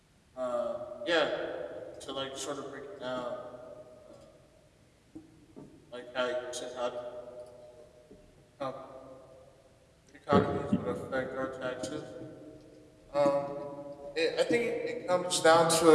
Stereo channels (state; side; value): identical; both; correlation 1.00